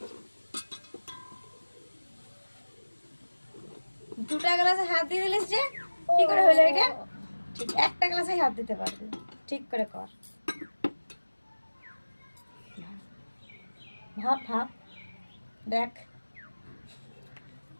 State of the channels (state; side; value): inverted; both; correlation -1.00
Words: দুটা গ্লাসে হাত দিয়ে দিলিস যে কি করে হলো এটা? ঠিক একটা গ্লাসে হাত দিতে পারবি, ঠিক করে কর। ভাব ভাব, দেখ